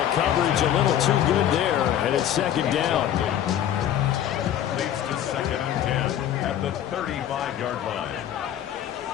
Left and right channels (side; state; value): right; quieter; 10.7 dB